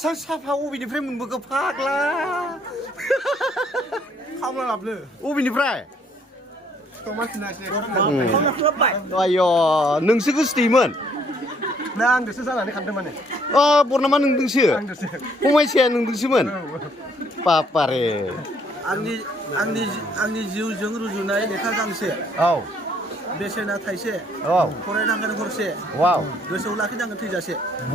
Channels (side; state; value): both; normal; correlation 0.65